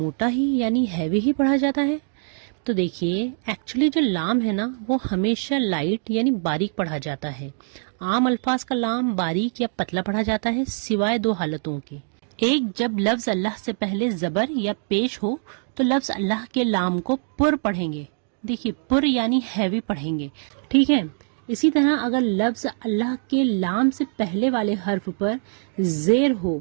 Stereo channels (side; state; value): left; silent; 63 dB below the other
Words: ہی یعنی ہیوی ہی پڑھا جاتا ہے؟ تو دیکھیے، ایکچولی جو لام ہے نا وہ ہمیشہ لائٹ یعنی باریک پڑھا جاتا ہے۔ عام الفاظ کا لام باریک یا پتلا پڑھا جاتا ہے، سوائے دو حالتوں کے۔ ایک، جب لفظ اللہ سے پہلے زبر یا پیش ہو تو لفظ اللہ کے لام کو پر پڑھیں گے۔ دیکھیے، پر یعنی ہیوی پڑھیں گے، ٹھیک ہے۔ اسی طرح اگر لفظ اللہ کے لام سے پہلے والے حرف پر زیر ہو